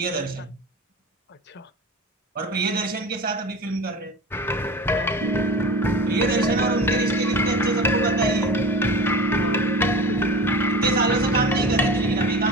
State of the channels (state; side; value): normal; both; correlation 0.33